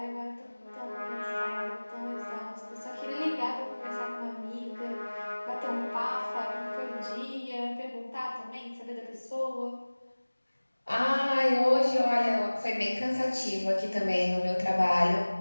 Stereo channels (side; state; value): both; inverted; correlation -1.00